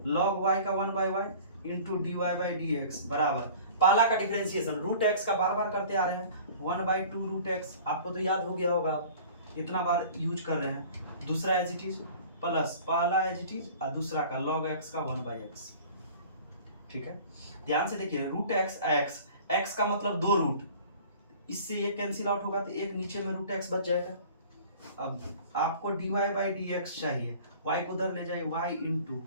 log y का 1 by y into dy by dx बराबर, पहला का डिफरेंशिएशन रूट x का बार बार करते आ रहे हैं, 1 बाई 2 रूट x, आपको तो याद हो गया होगा, इतना बार यूज कर रहे हैं। दूसरा एज इट इज प्लस पहला एज इट इज और दूसरा का log x का 1 बाई एक्स, ठीक है। ध्यान से देखिए, रूट x का मतलब 2 रूट, इससे ये कैंसिल आउट होगा तो एक नीचे में रूट x बच जाएगा। अब आपको dy बाई dx चाहिए, y को उधर ले जाए, y इंटू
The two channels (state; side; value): inverted; both; correlation -0.45